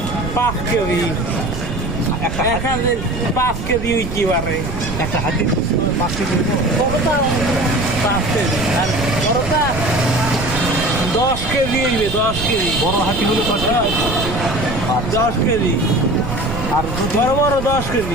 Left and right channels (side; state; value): right; noise; rumble, 6 dB below the sound